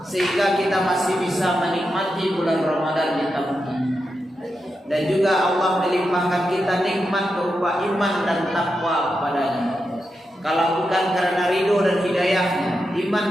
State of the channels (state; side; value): normal; both; correlation 0.87